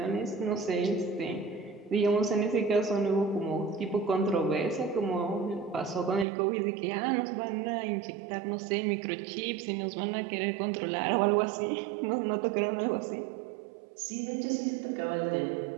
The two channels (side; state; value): left; drops out; at 6.2 s